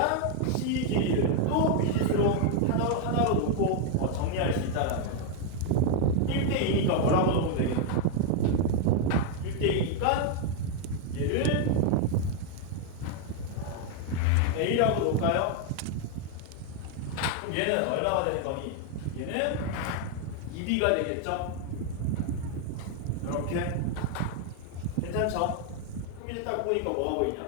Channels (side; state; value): both; different; correlation 0.00